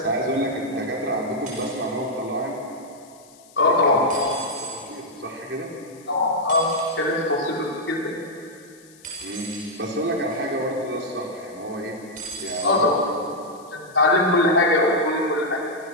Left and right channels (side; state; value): left; noise; hiss, 26 dB below the sound